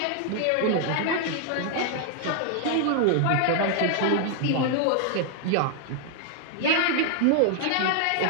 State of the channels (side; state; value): both; different; correlation 0.00